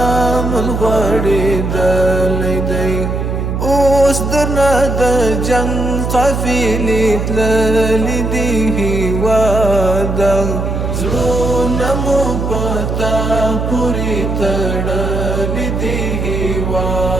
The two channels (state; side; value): noise; right; hum, 2 dB below the sound